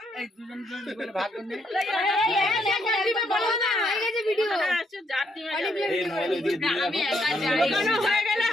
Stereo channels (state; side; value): normal; both; correlation 0.74